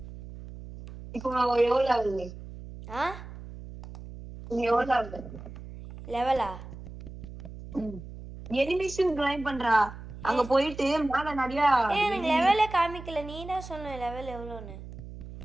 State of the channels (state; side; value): noise; right; hum, 13 dB below the sound